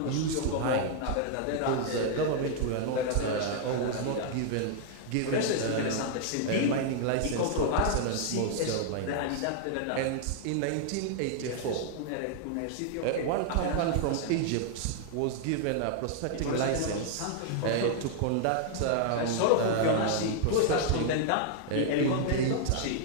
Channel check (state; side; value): different; both; correlation 0.00